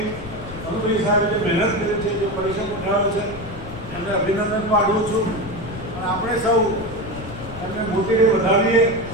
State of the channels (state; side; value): noise; left; rumble, 12 dB below the sound